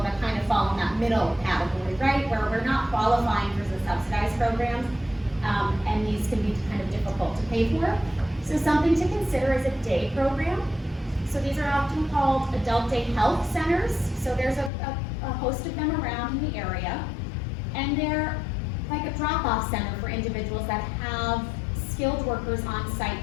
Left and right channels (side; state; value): right; drops out; at 14.7 s